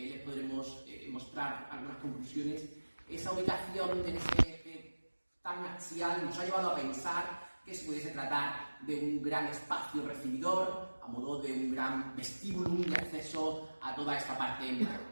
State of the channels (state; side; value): inverted; both; correlation -1.00